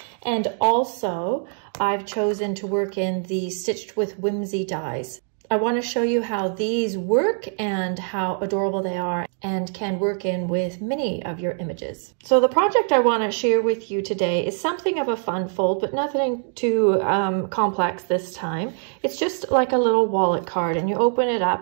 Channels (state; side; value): silent; left; 55 dB below the other